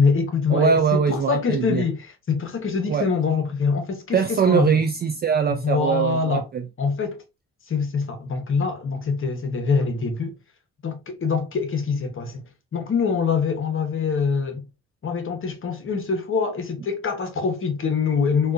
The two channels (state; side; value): normal; both; correlation 0.37